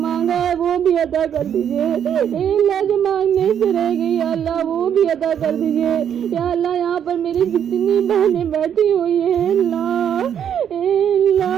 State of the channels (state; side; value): quieter; left; 8.9 dB